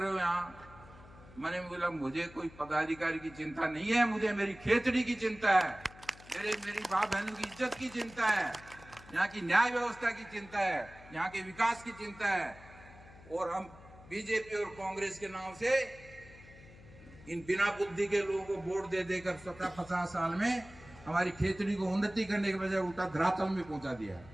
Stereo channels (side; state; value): left; noise; hum, 20 dB below the sound